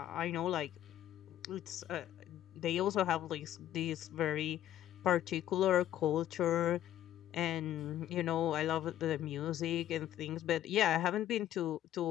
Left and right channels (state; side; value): quieter; right; 12.1 dB